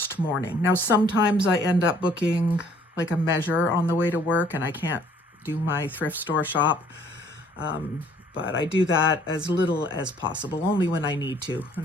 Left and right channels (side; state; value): both; normal; correlation 0.60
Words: morning. Now, sometimes I end up booking like a measure on the way to work and I can't do my thrift store shop, but I do that as little as possible, only when I need to,